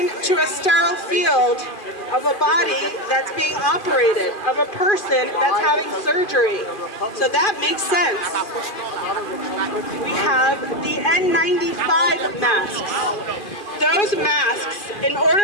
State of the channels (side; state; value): right; late; 2.4 ms